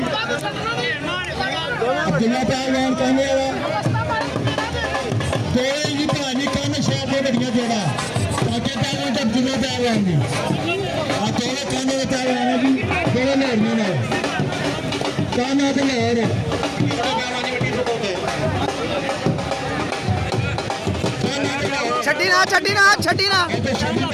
ਅਬਦੁੱਲਾ ਪਹਿਲਵਾਨ ਕਹਿੰਦੇ ਵਾਲਾ ਕੋਈ ਜੀ ਭਾਜੀ ਕੰਨ ਸ਼ਾਹ ਦੇ ਵੱਡੀਆਂ ਜੋੜਾ ਕਾਕੇ ਪਹਿਲਵਾਨ ਤੇ ਅਬਦੁੱਲਾ ਪਹਿਲਵਾਨ ਦੀ ਆ ਦੋਵੇਂ ਕੰਨ ਦੇ ਪਹਿਲਵਾਨ ਜੀ ਦੋਵੇਂ ਲੋੜੀਆਂ ਨੇ ਕੰਨ ਤੇ ਲੋੜ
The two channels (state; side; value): identical; both; correlation 1.00